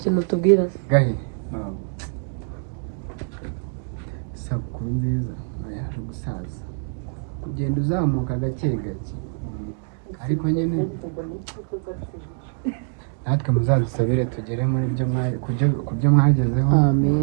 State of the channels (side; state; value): left; silent; 57 dB below the other